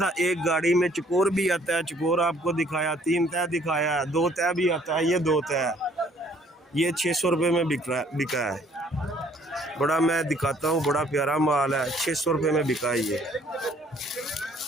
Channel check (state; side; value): normal; both; correlation 0.61